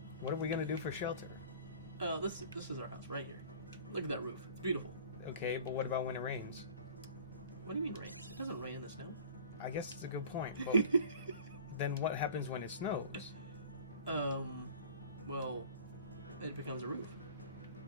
What are we gonna do for shelter? This is our house right here. Look at that roof. It's beautiful. Okay, but what about when it rains? What do you mean rain? It doesn't rain in the snow. I guess it's a good point. But then what happens when it snows? Well, it becomes a roof.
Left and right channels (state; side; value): inverted; both; correlation -0.44